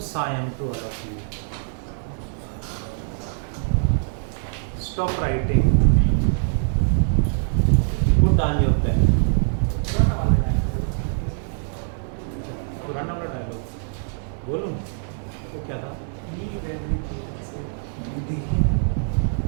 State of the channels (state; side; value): silent; left; digital silence